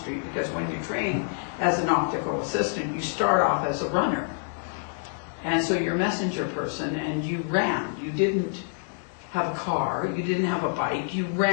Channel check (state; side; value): silent; right; digital silence